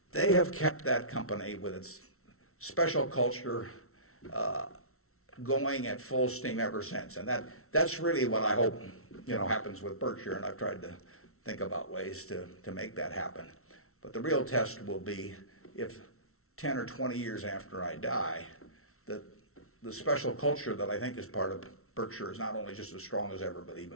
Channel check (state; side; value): late; right; 0.63 ms